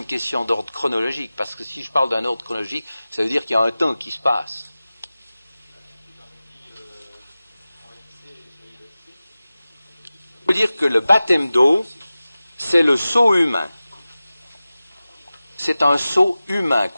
question d'ordre chronologique, parce que si je parle d'un ordre chronologique, ça veut dire qu'il y a un temps qui se passe. Ça veut dire que le baptême d'eau, c'est le sceau humain. C'est un sceau humain,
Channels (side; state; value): both; inverted; correlation -0.96